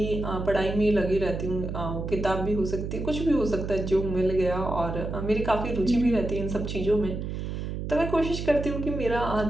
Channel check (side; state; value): right; noise; hum, 5 dB below the sound